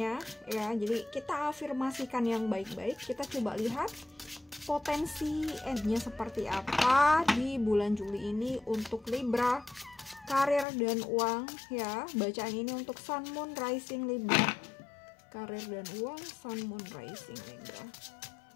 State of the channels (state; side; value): drops out; right; at 10.7 s